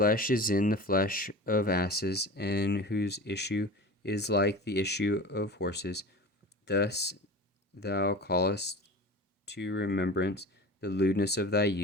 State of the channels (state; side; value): normal; both; correlation 0.34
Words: is in the flesh of asses, and whose issue is like the issue of horses. Thus thou callest to remembrance the lewdness of thy